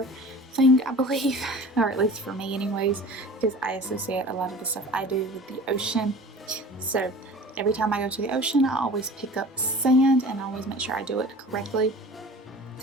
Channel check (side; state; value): both; normal; correlation 0.41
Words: thing, I believe, or at least for me anyways, because I associate a lot of the stuff I do with the ocean. So every time I go to the ocean, I always pick up sand, and I always make sure I do it correctly,